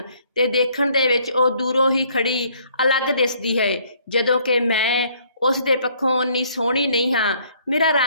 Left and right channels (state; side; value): inverted; both; correlation -0.63